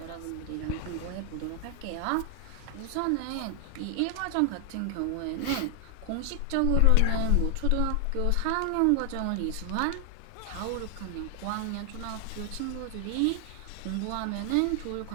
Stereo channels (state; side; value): different; both; correlation 0.00